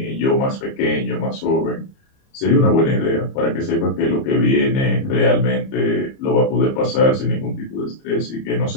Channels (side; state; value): right; late; 30 ms